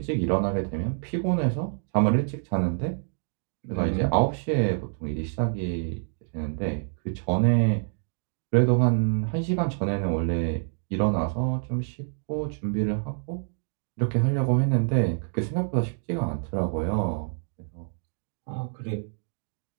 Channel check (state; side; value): silent; left; digital silence